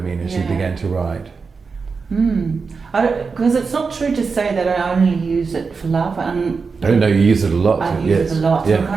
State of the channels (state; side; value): quieter; left; 4.9 dB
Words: as you began to write? Because it's not true to say that I only use it for love. No, you use it a lot. I use it a lot. So I'm